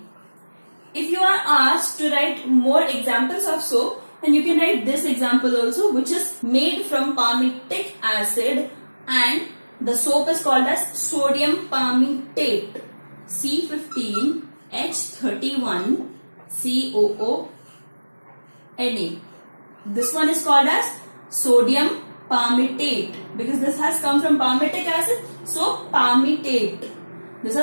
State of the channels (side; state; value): both; inverted; correlation -1.00